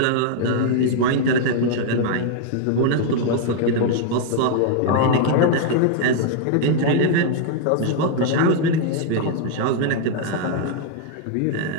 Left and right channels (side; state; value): both; different; correlation 0.00